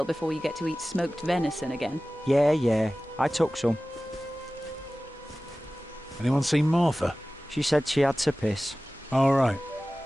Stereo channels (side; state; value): both; normal; correlation 0.97